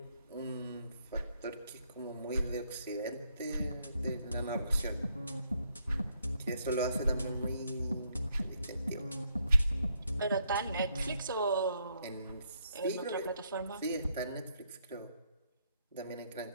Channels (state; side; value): inverted; both; correlation -0.74